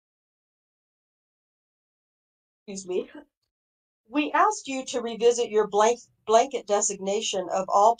Excuse me. We asked you to revisit your blanket designation of all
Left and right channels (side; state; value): both; identical; correlation 1.00